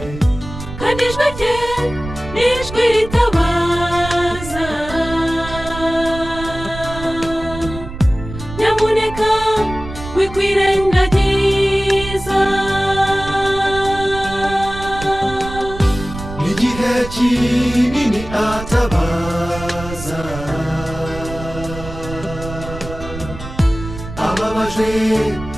kandi ijwi rye ni ijwi ritabaza. Nyamuneka wikwirengagiza, igihe kinini atabaza, ababajwe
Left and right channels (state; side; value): noise; right; rumble, 11 dB below the sound